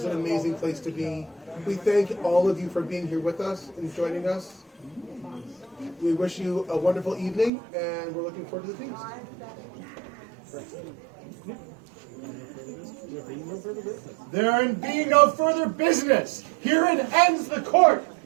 an amazing place to be. We thank all of you for being here with us and joining us. We wish you a wonderful evening, and we're looking forward to the feast. There being no further business, herein ends the court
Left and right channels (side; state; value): left; drops out; at 7.5 s